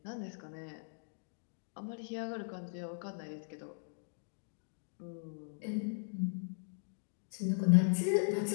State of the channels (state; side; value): silent; right; digital silence